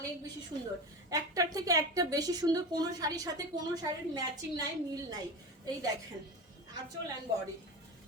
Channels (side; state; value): both; normal; correlation 0.25